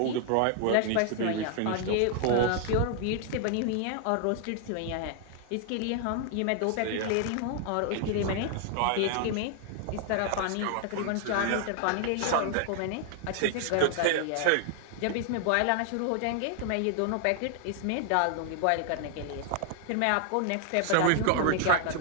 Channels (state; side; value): different; both; correlation 0.00